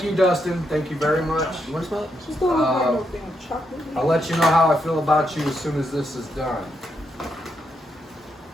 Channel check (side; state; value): both; normal; correlation 0.81